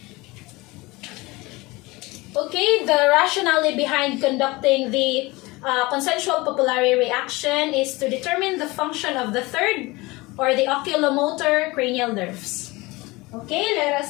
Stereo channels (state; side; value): quieter; right; 22.5 dB